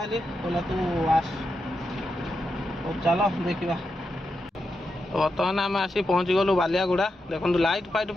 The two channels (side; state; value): both; normal; correlation 0.86